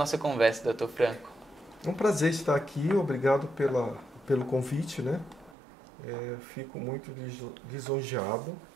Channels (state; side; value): drops out; left; at 5.6 s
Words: conversa, Dr. Franco. É um prazer estar aqui, obrigado pelo convite, né? Fico muito lisonjeado